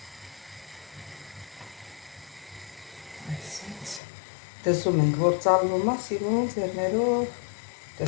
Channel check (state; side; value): drops out; right; at 4.0 s